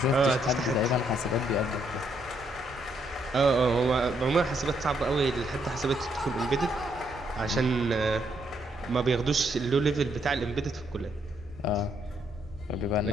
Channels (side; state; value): both; normal; correlation 0.74